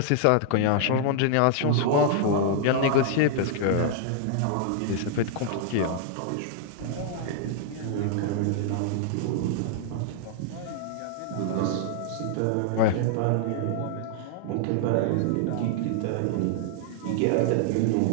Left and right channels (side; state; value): both; different; correlation -0.01